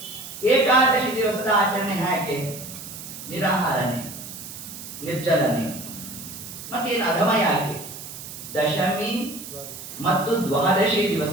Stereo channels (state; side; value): noise; right; hiss, 12 dB below the sound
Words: ಏಕಾದಶಿ ದಿವಸದ ಆಚರಣೆ ಹೇಗೆ? ನಿರಾಹಾರನೆ, ನಿರ್ಜಲನೆ. ಮತ್ತೇನು ಅಧಮ ಯಾಕೆ? ದಶಮಿ ಮತ್ತು ದ್ವಾದಶಿ